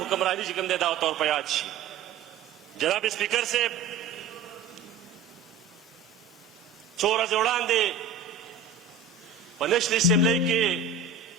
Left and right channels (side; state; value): left; quieter; 5.5 dB